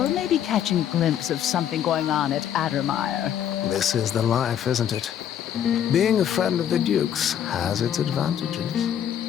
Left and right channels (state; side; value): quieter; right; 9.7 dB